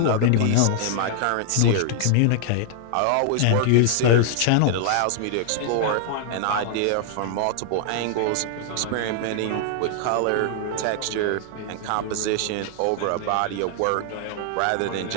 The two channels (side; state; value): both; different; correlation 0.00